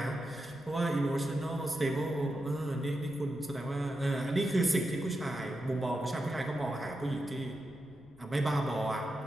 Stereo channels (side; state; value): left; noise; rumble, 24 dB below the sound